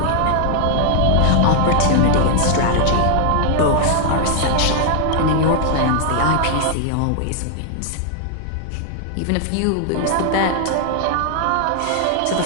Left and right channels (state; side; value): different; both; correlation 0.00